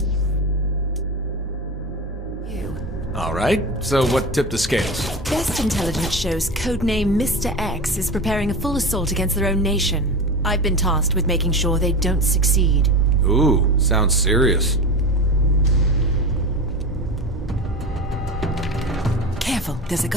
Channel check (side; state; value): both; normal; correlation 0.26